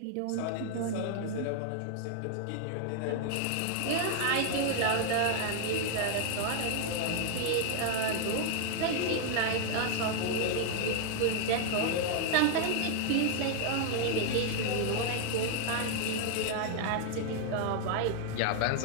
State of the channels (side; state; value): both; different; correlation 0.00